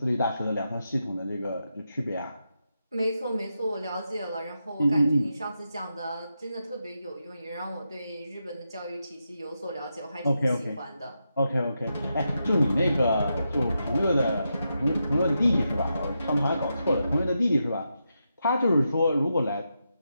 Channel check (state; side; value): inverted; both; correlation -0.86